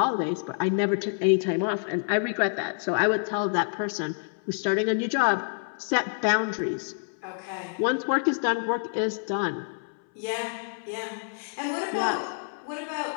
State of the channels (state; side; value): silent; right; 60 dB below the other